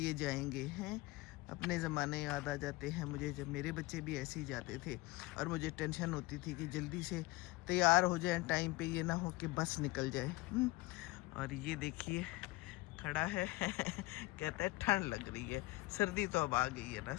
जाएंगे हैं। अपने ज़माने याद आ जाते हैं मुझे, जब मेरे बच्चे भी ऐसे ही जाते थे और मुझे टेंशन होती थी कि जल्दी से तैयार हो जाए टाइम पे, ये ना हो कि बस निकल जाए। और ये देखिए खड़ा है कहता है ठंड लग रही है। सर्दी तो अब आ गई है ना,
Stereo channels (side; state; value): right; quieter; 20.3 dB